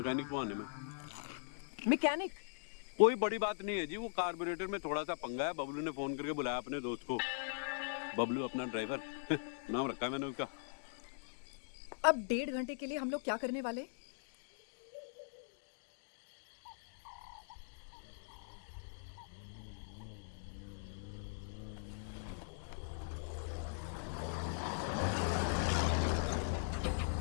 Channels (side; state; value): right; silent; digital silence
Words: को आने में। मैकेनिक? कोई बड़ी बात नहीं है जी, वो कार्बोरेटर में थोड़ा सा पंगा है। बबलू ने फोन करके बुलाया अपने दोस्त को। बबलू अपना ड्राइवर नाम रखा है मैंने उसका। अब 1.5 घंटे के लिए हम लोग क्या करने वाले?